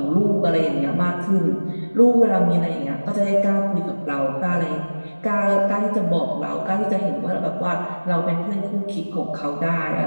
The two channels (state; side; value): inverted; both; correlation -1.00